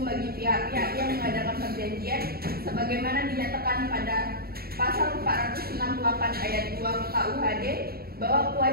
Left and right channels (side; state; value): left; late; 0.44 ms